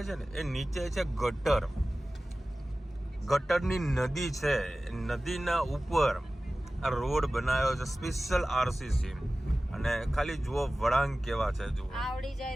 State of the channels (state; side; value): normal; both; correlation 0.96